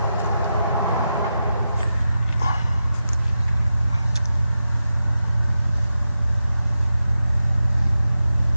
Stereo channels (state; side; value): inverted; both; correlation -0.90